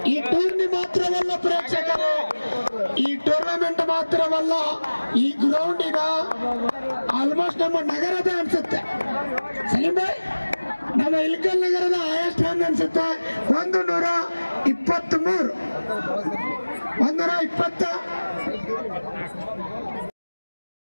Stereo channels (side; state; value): both; inverted; correlation -1.00